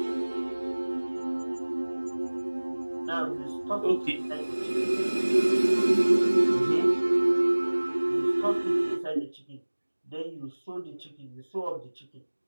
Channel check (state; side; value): inverted; both; correlation -1.00